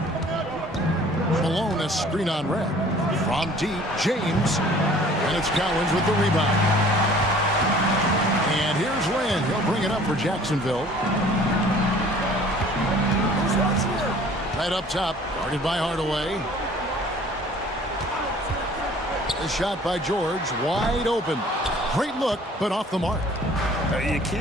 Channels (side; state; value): both; normal; correlation 0.51